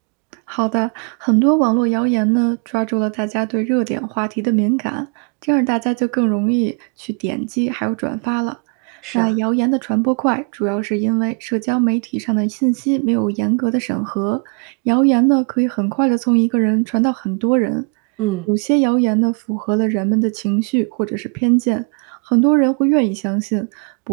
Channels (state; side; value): quieter; left; 36.9 dB